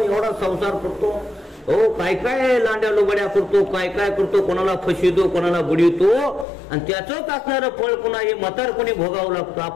एवढा संसार करतो, हो काय काय लांड्या लोबड्या करतो, काय काय करतो, कोणाला फसवितो, कोणाला बुडवितो, आणि त्याचंच असणारं फळ पुन्हा हे म्हातारपणी भोगावं लागतं.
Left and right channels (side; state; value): right; drops out; at 6.5 s